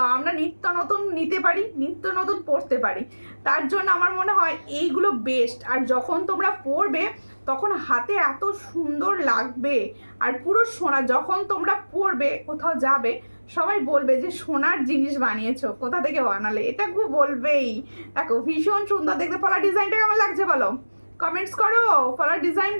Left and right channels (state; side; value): inverted; both; correlation -1.00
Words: আমরা নিত্য নতুন নিতে পারি, নিত্য নতুন পরতে পারি। তার জন্য আমার মনে হয় এইগুলো বেস্ট। আর যখন তোমরা পরবে তখন হাতে এত সুন্দর লাগবে, আর পুরো সোনা। যখন তোমরা পরবে কোথাও যাবে সবাই বলবে যে সোনার জিনিস বানিয়েছো, কোথা থেকে বানালে, এটা খুব বলবেই। দেখো ভীষণ সুন্দর দেখতে। পলার ডিজাইনটা কেমন লাগছে বলো, কমেন্টস করো। পলার ডিজাইন